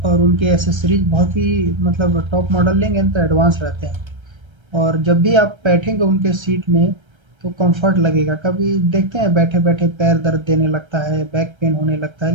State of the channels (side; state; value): left; late; 1.3 ms